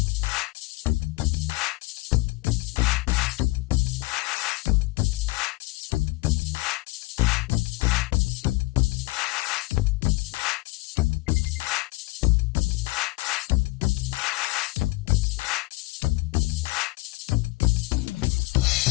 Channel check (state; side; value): quieter; right; 22.4 dB